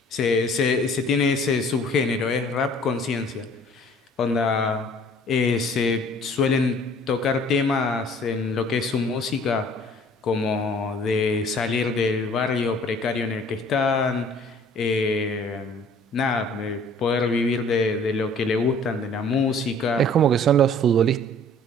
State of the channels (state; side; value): normal; both; correlation 0.53